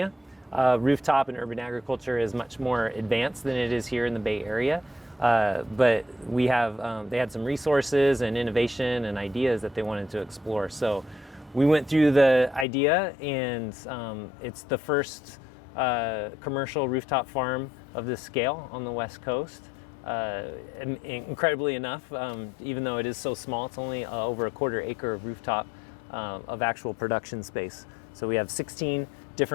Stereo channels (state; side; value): drops out; right; at 12.7 s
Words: rooftop and urban agriculture is much more advanced than it is here in the Bay Area. But we have, they had some resources and innovation and ideas that they wanted to explore. So we went through the idea, and it's the first commercial rooftop farm of this scale on the West Coast. Incredibly enough, even though it is so small, it's only over a quarter acre of rooftop of actual production space. So we have 16